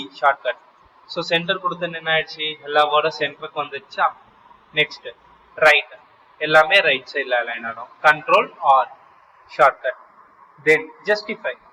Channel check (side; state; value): both; identical; correlation 1.00